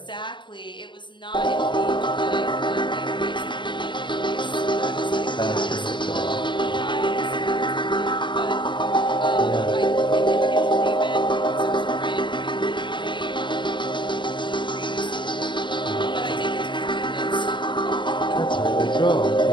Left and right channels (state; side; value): late; right; 0.23 ms